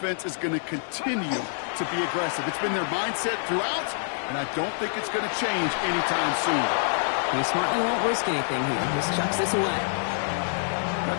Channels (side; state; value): right; silent; digital silence